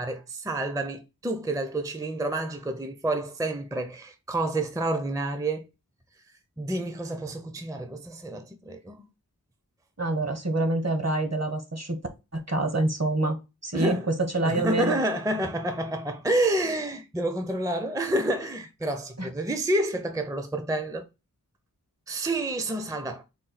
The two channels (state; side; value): normal; both; correlation 0.51